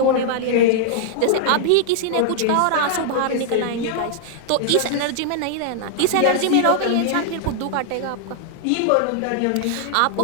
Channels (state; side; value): different; both; correlation -0.01